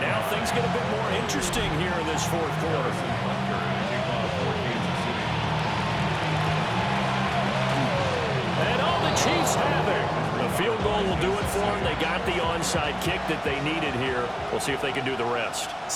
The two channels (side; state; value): both; identical; correlation 1.00